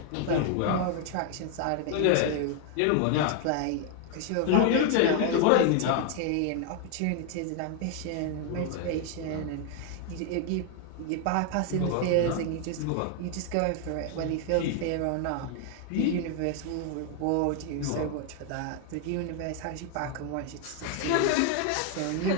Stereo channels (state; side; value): different; both; correlation 0.01